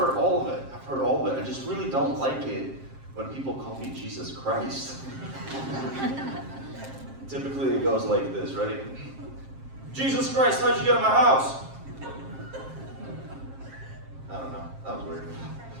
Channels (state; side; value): late; left; 7.5 ms